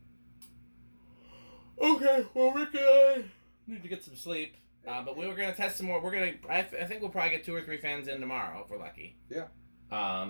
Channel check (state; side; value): inverted; both; correlation -1.00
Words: Okay, well we're gonna need to get some sleep. But we were gonna test some more. I think we'll probably get 2 or 3 fans in tomorrow if we're lucky. Yeah.